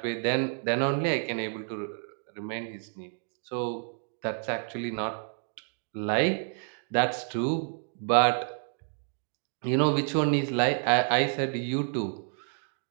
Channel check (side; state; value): left; silent; 56 dB below the other